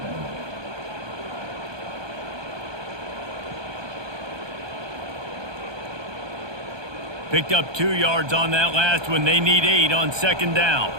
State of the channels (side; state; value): left; late; 1.2 ms